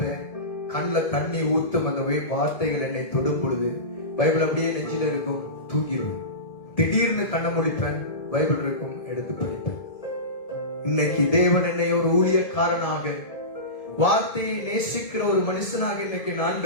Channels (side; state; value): right; late; 1.7 ms